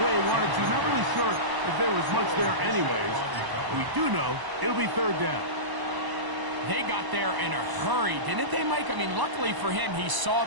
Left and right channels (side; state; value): left; late; 1.0 ms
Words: way he wanted to. Not really sure if there was much there anyways. We do know it'll be 3rd down. They got there in a hurry, didn't they, Mike? I mean, luckily for him, he saw